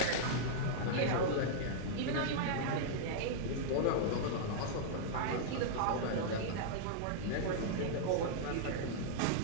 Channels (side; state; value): both; different; correlation -0.02